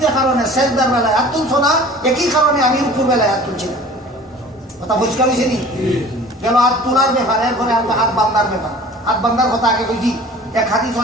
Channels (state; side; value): normal; both; correlation 0.45